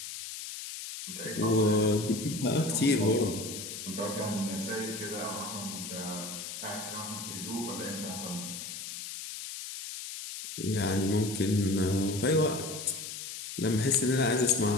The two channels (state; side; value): noise; left; hiss, 8 dB below the sound